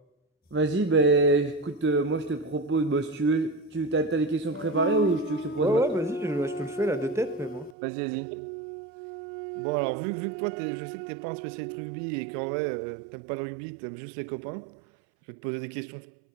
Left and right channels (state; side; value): drops out; left; at 7.8 s